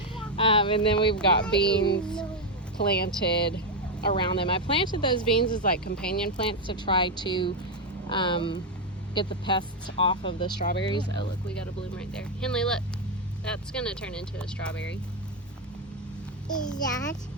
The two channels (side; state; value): both; normal; correlation 0.05